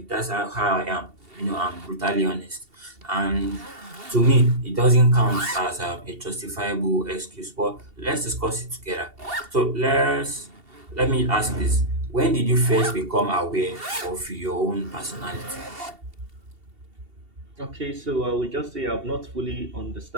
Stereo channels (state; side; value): late; left; 2.7 ms